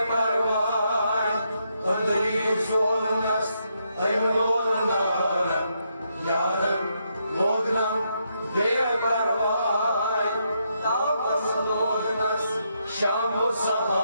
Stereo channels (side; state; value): both; inverted; correlation -0.79